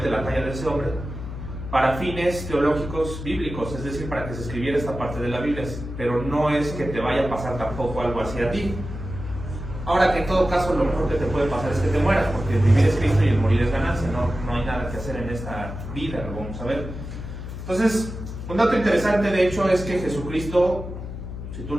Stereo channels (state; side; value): noise; left; hum, 9 dB below the sound